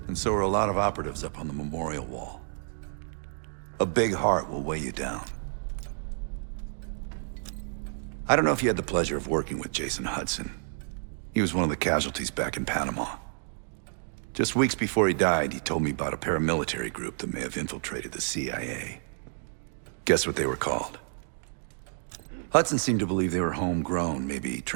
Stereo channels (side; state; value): left; silent; digital silence